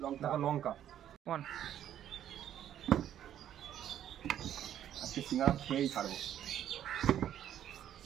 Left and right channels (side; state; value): left; quieter; 10.8 dB